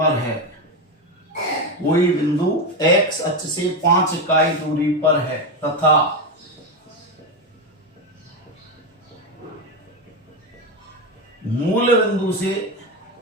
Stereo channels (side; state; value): both; normal; correlation 0.13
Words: है। कोई बिंदु एक्स अक्ष से 5 इकाई दूरी पर है तथा मूल बिंदु से